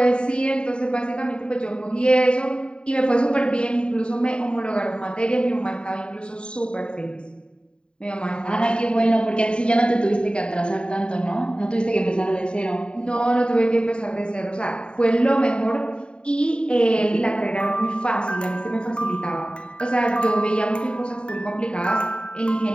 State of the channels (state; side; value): late; right; 0.052 ms